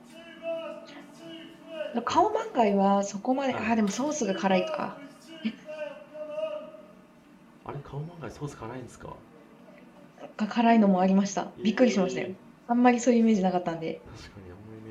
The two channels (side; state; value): both; identical; correlation 1.00